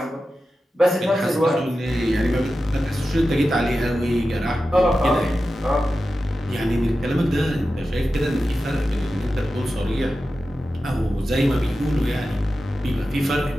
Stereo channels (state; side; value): normal; both; correlation 0.92